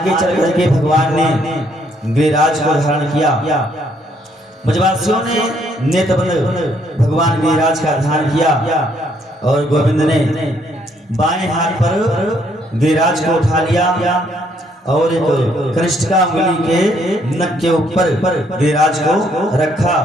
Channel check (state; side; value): normal; both; correlation 0.69